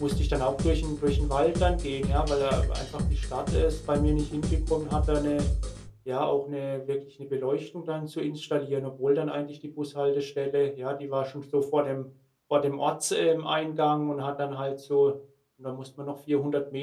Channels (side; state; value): both; identical; correlation 1.00